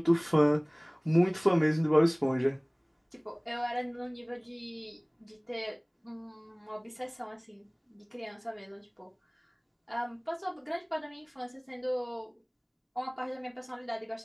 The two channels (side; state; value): both; identical; correlation 1.00